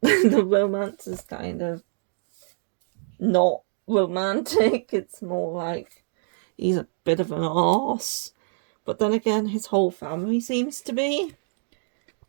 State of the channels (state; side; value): silent; left; digital silence